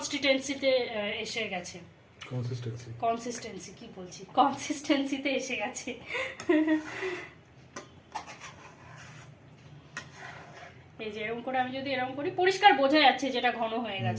এসে গেছে। কনসিস্টেন্সিতে এসে গেছে। এই যে এরকম করে আমি যদি এরকম করি পরিষ্কার বোঝা যাচ্ছে যেটা ঘন হয়ে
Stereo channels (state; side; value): identical; both; correlation 1.00